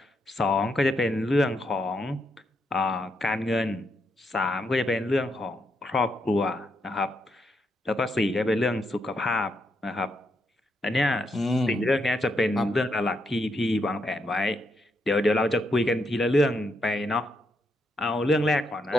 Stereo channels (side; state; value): both; normal; correlation 0.79